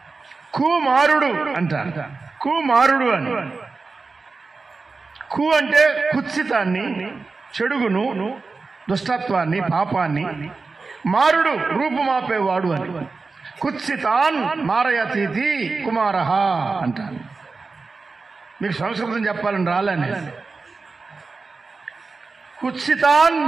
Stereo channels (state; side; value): quieter; left; 4.1 dB